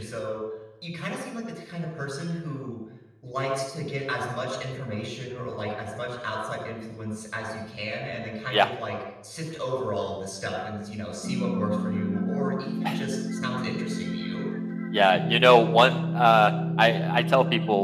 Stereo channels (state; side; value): identical; both; correlation 1.00